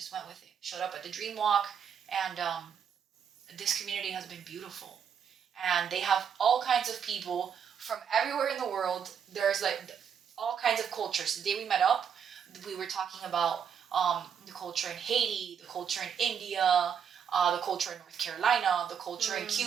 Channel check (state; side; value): quieter; left; 7.6 dB